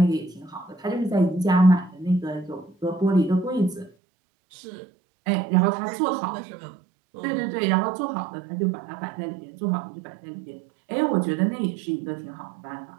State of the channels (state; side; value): drops out; left; at 3.9 s